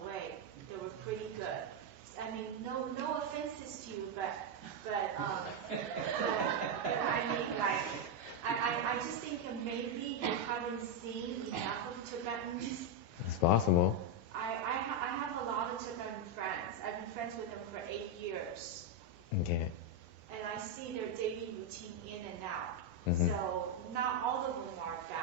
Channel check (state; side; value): normal; both; correlation 0.02